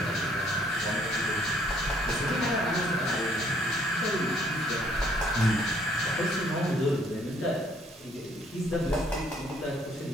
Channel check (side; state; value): both; normal; correlation 0.64